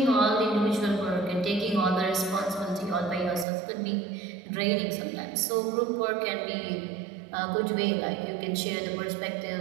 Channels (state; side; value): drops out; left; at 3.5 s